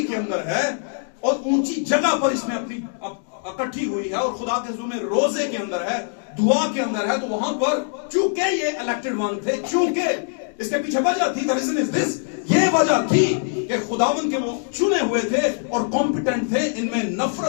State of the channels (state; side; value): silent; right; digital silence